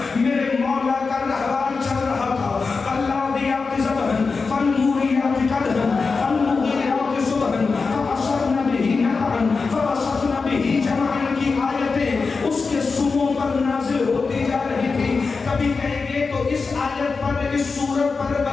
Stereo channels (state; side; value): quieter; right; 4.5 dB